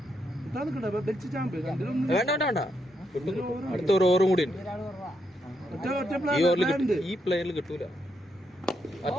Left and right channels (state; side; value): normal; both; correlation 0.79